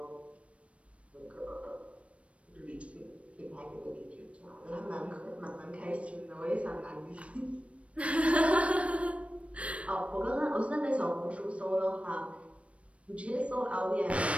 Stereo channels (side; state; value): left; late; 0.062 ms